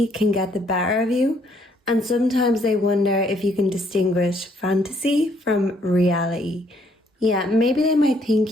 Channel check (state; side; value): normal; both; correlation 0.67